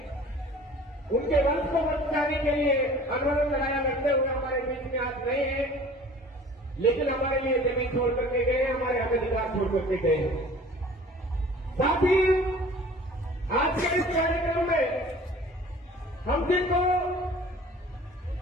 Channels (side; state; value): both; normal; correlation 0.47